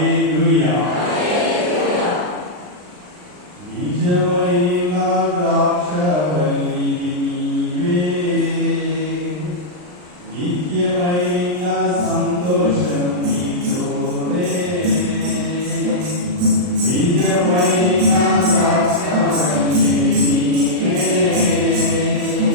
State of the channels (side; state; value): left; late; 39 ms